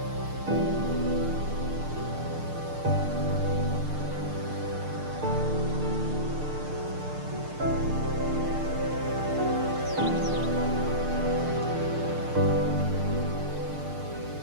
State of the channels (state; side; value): late; left; 6.6 ms